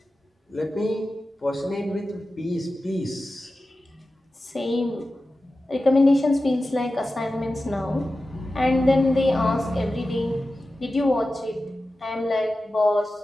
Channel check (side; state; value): both; normal; correlation 0.94